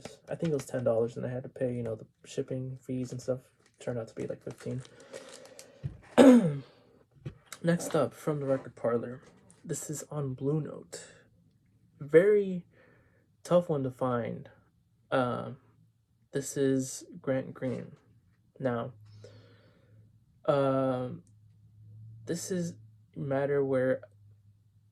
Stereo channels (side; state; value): both; identical; correlation 1.00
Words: I think it was $10, and I had to pay, the shipping fees and stuff. Turned out to be like 15. Next up, from the Record Parlor, this is on Blue Note. Very tough one to find. This is Grant Green. Now, this is a matter where